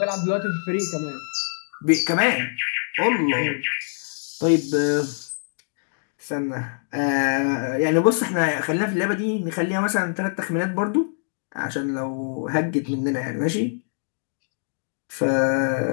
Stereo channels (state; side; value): silent; right; digital silence